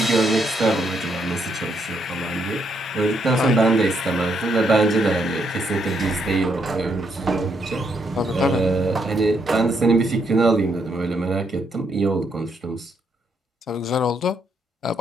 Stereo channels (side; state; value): both; normal; correlation 0.75